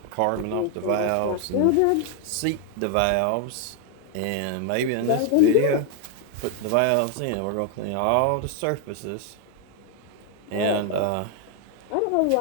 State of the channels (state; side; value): different; both; correlation 0.01